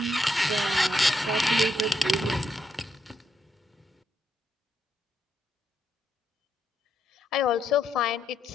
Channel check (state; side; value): normal; both; correlation 0.79